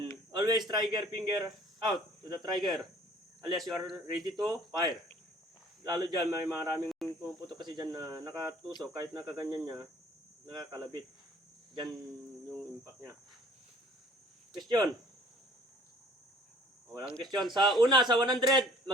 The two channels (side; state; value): both; normal; correlation 0.55